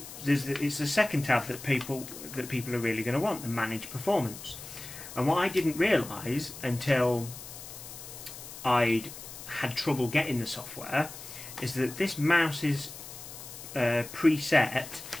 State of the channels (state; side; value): noise; left; hiss, 13 dB below the sound